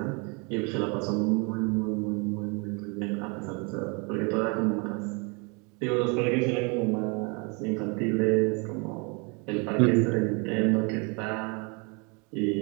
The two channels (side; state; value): left; quieter; 32.2 dB